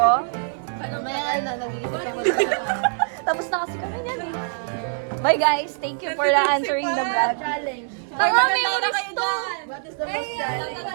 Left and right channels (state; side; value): silent; left; 63 dB below the other